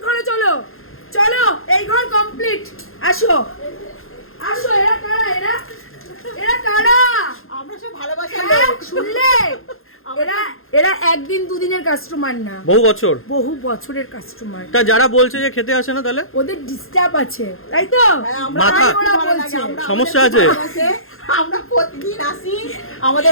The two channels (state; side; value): late; right; 0.61 ms